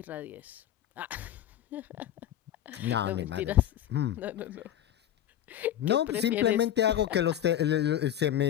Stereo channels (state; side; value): quieter; right; 11.3 dB